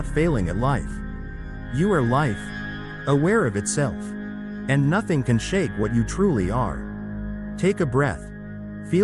failing at life. You are life, aware of itself. And nothing can shake what you truly are. Take a breath.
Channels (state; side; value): identical; both; correlation 1.00